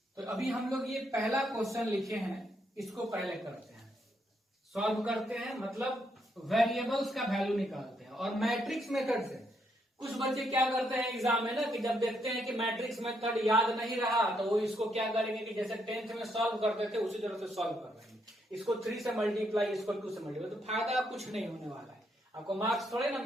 तो अभी हम लोग ये पहला क्वेश्चन लिखे हैं, इसको पहले करते हैं, सॉल्व करते हैं, मतलब वेरिएबल्स का वैल्यू निकालते हैं। और मैट्रिक्स मेथड से कुछ बच्चे क्या करते हैं एग्जाम में ना, कि जब देखते हैं कि मैट्रिक्स मेथड याद नहीं रहा तो वो इसको क्या करेंगे कि जैसे 10th में सॉल्व करते थे उसी तरह से सॉल्व कर रहे हैं, इसको 3 से मल्टीप्लाई, इसको 2 से मल्टीप्लाई। तो फायदा कुछ नहीं होने वाला है, आपको मार्क्स थोड़े ना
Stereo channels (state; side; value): normal; both; correlation 0.76